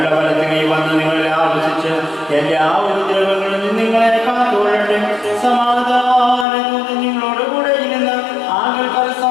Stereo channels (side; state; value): right; drops out; at 6.5 s